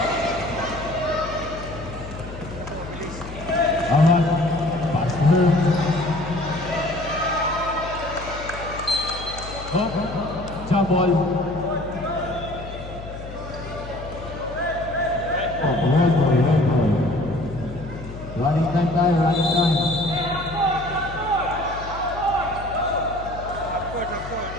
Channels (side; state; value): left; noise; hum, 12 dB below the sound